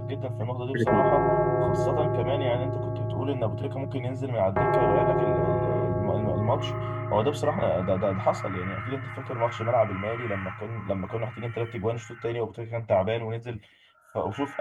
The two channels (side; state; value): both; identical; correlation 1.00